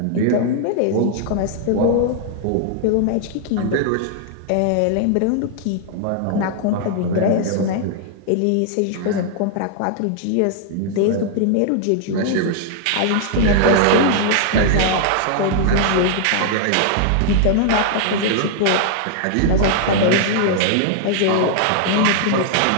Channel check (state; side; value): different; both; correlation -0.01